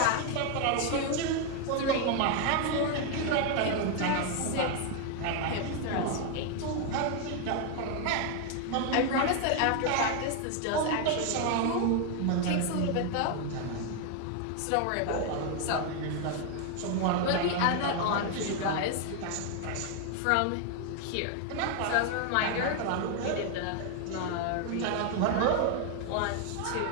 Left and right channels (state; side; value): different; both; correlation 0.01